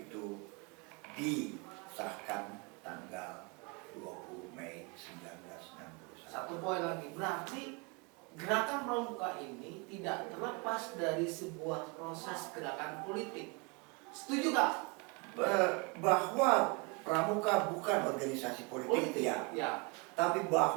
disahkan tanggal 20 Mei 1961. Satu poin lagi, berarti gerakan pramuka ini tidak terlepas dari sebuah proses gerakan politik. Setuju Kak? Bahwa pramuka bukan organisasi politik ya. Tapi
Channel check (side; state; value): left; quieter; 30.1 dB